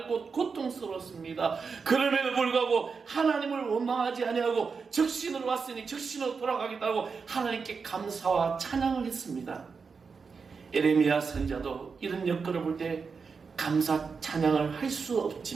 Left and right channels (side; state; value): left; quieter; 5.3 dB